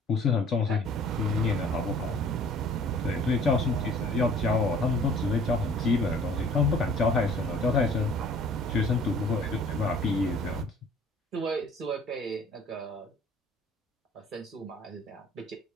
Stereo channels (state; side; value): normal; both; correlation 0.52